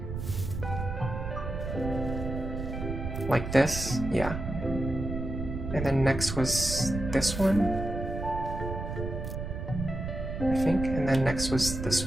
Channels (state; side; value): noise; right; rumble, 5 dB below the sound